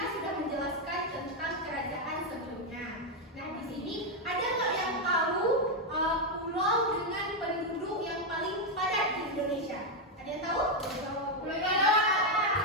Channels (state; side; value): normal; both; correlation 0.03